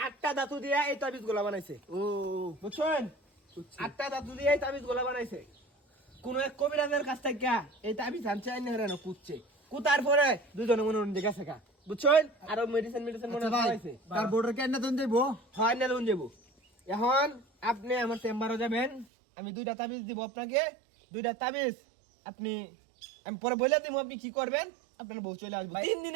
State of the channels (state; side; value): drops out; left; at 19.1 s